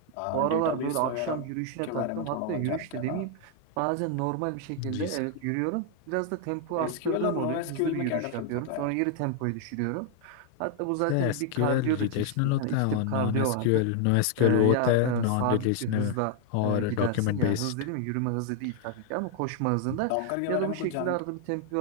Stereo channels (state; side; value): different; both; correlation 0.00